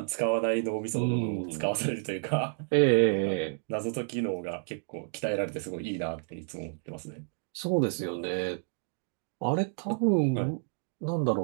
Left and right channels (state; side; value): silent; left; digital silence